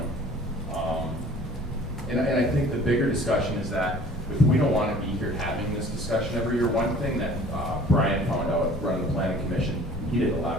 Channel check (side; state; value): both; normal; correlation 0.49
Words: And I think the bigger discussion is that if we don't want to be here having this discussion every year, one thing that Brian found out running the planning commission, he did a